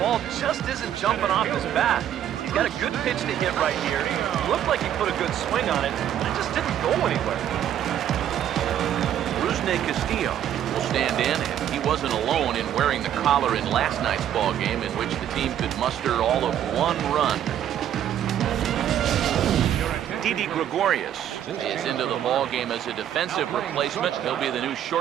just isn't jumping off his bat. He's got a good pitch to hit right here. It looked like he put a good swing on it, but it just didn't go anywhere. Rusney Castillo will stand in, and he wasn't alone in wearing the collar in last night's ball game, in which the team could muster all of 1 run. Didi Gregorius is into the ball game as a defensive replacement. He'll be the new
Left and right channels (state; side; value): quieter; left; 10.6 dB